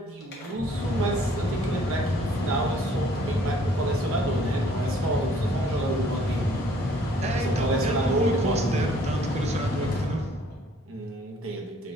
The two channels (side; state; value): both; normal; correlation 0.59